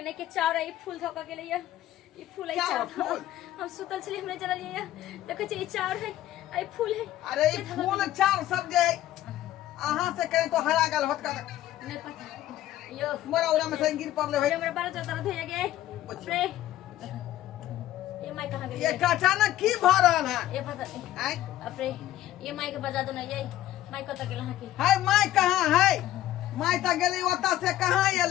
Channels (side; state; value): right; quieter; 13.7 dB